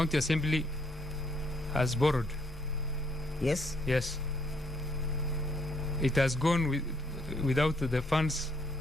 assembly has borrowed. Yes? Yes. It has gone without the funds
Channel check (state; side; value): normal; both; correlation 0.69